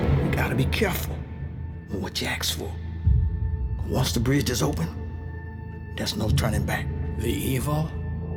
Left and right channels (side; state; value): both; identical; correlation 1.00